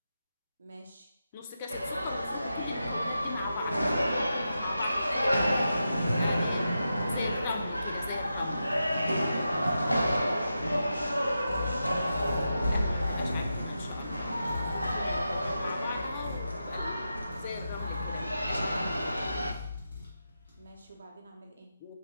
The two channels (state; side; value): inverted; both; correlation -0.89